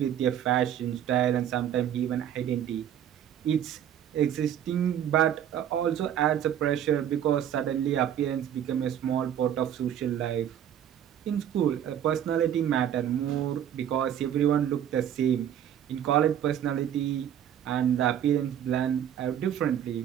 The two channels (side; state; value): left; quieter; 10.0 dB